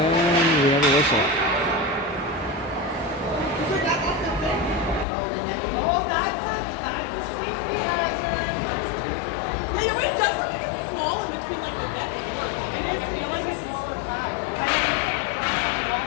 we have a whistle.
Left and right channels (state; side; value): drops out; right; at 5.1 s